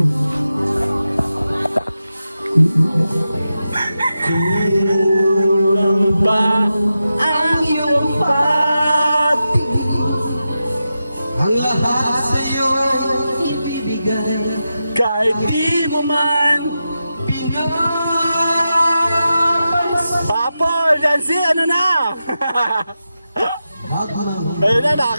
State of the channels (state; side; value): inverted; both; correlation -0.90